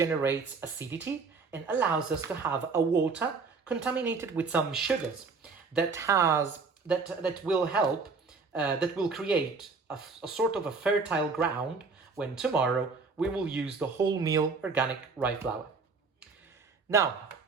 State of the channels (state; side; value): quieter; left; 4.5 dB